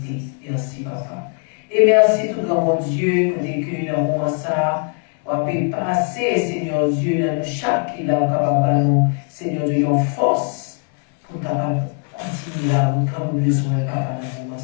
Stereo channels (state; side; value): quieter; right; 39.2 dB